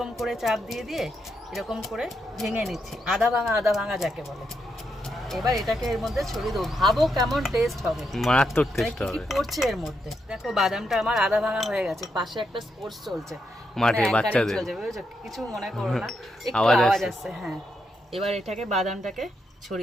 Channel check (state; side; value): normal; both; correlation 0.81